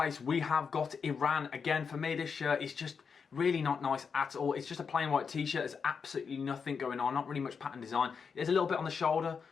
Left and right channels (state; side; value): quieter; right; 5.9 dB